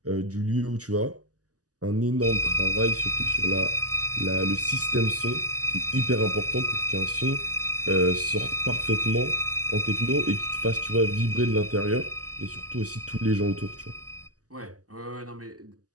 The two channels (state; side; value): late; left; 0.67 ms